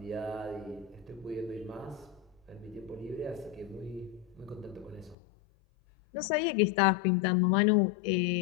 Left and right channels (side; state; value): right; drops out; at 5.2 s